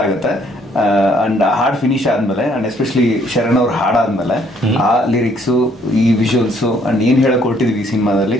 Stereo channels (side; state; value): both; normal; correlation 0.65